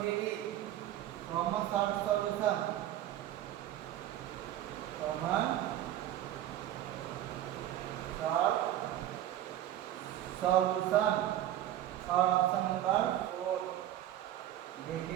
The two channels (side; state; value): left; quieter; 12.5 dB